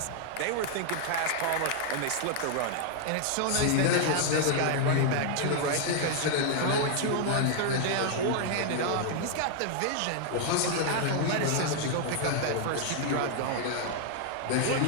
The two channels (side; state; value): both; different; correlation 0.00